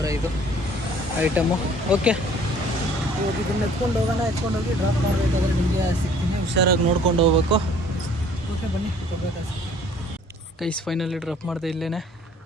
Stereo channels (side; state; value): both; normal; correlation 0.55